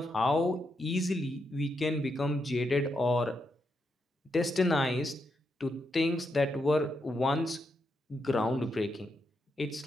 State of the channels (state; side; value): normal; both; correlation 0.82